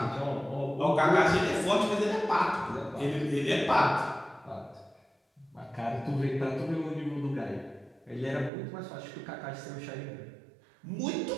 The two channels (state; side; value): drops out; left; at 8.5 s